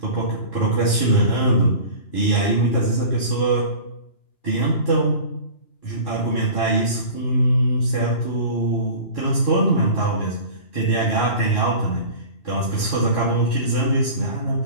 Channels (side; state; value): right; late; 2.9 ms